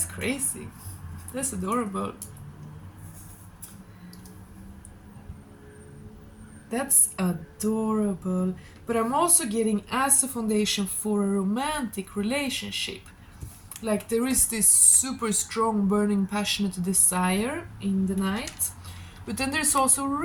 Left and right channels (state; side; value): identical; both; correlation 1.00